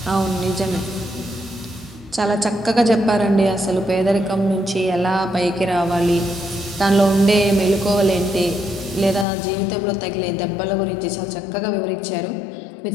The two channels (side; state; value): right; drops out; at 9.2 s